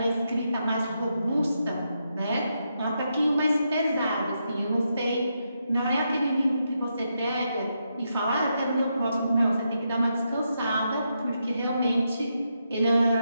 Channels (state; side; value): inverted; both; correlation -0.83